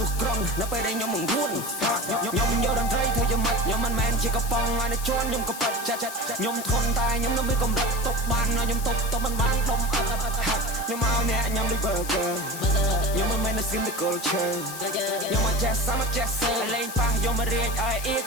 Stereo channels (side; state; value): left; noise; hiss, 10 dB below the sound